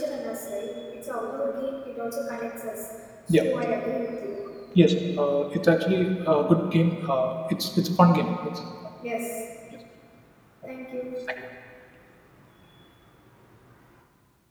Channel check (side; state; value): both; identical; correlation 1.00